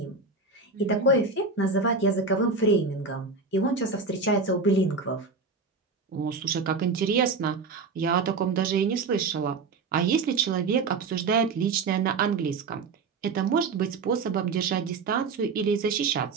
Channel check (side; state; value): left; quieter; 4.3 dB